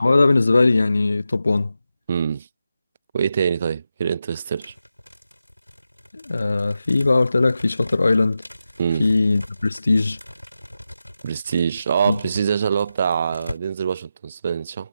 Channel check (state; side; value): inverted; both; correlation -0.90